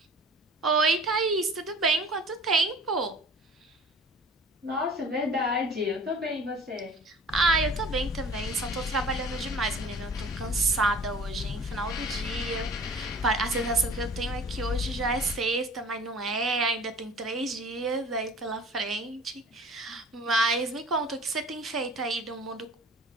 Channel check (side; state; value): both; normal; correlation 0.46